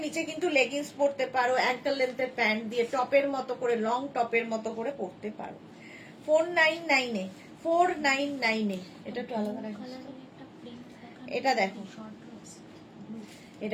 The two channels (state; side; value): identical; both; correlation 1.00